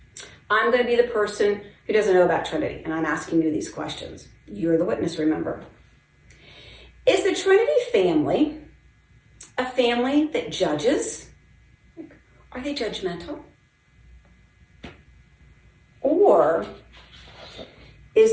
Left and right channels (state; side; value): identical; both; correlation 1.00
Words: I'm going to be the person who doesn't know about Trinity, and I'm asking you these questions. You're the witness, remember. Is the Trinity family a family that judges? Are they judgmental? Or is